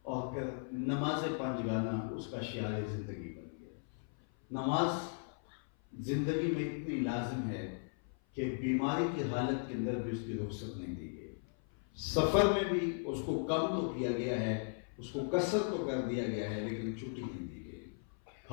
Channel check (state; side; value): silent; right; 53 dB below the other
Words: اور پھر نماز پنجگانہ اس کا شعار زندگی بن گیا. نماز زندگی میں اتنی لازم ہے کہ بیماری کی حالت کے اندر بھی اس کی رخصت نہیں دی گئی. سفر میں بھی اس کو کم تو کیا گیا ہے، اس کو کثرت تو کر دیا گیا ہے، لیکن چھٹی نہیں دی گئی.